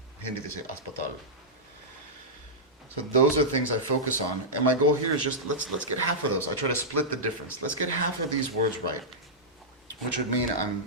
Hindi they say aspatal. So those are things I focus on, and my goal here is just let's get half of those. I try to split the difference. Let's get half of these words right, which would mean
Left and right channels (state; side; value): normal; both; correlation -0.12